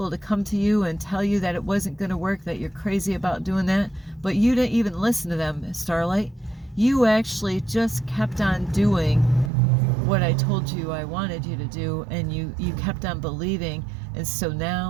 to come to you and tell you that it wasn't going to work, that you're crazy about doing that. But you didn't even listen to them, Starlight. You actually just kept on doing what I told you I wanted you to do, and you kept on believing. And so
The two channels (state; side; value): drops out; left; at 9.5 s